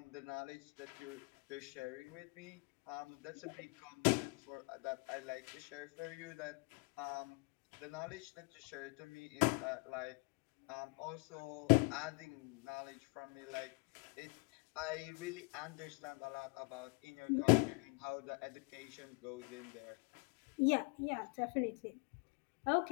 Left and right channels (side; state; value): right; quieter; 31.6 dB